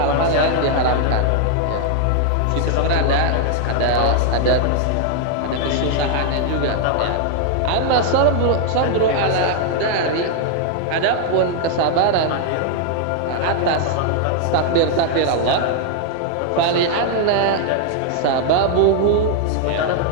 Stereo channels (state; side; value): different; both; correlation 0.00